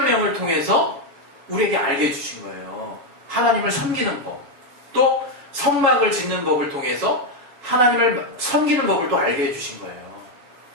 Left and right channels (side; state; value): left; late; 7.2 ms